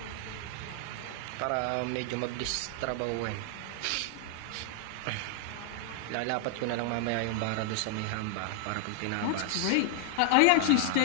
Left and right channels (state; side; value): different; both; correlation 0.00